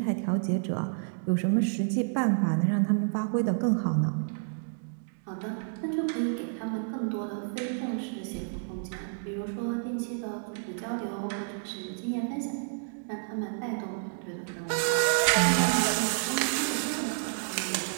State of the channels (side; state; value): left; silent; digital silence